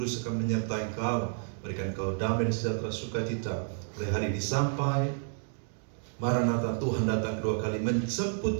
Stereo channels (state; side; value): silent; left; digital silence